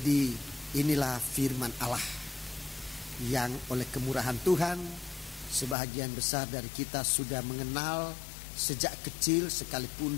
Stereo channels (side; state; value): right; drops out; at 5.8 s